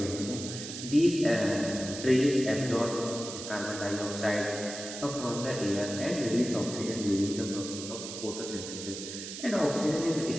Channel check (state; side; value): noise; right; hiss, 9 dB below the sound